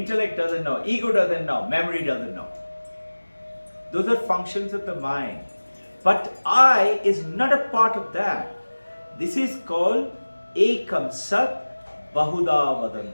doesn't know. Ego doesn't know. Memory doesn't know. Those are functions of the mind. But I is not a part of that. This is called Ekam Sat Bahuda Vadanti.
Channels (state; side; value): inverted; both; correlation -1.00